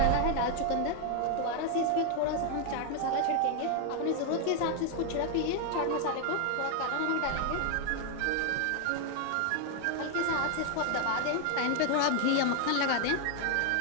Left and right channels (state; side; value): different; both; correlation 0.00